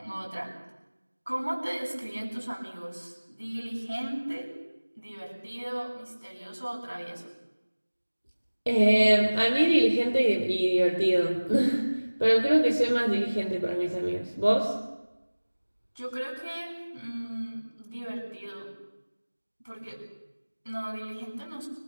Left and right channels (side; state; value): both; inverted; correlation -1.00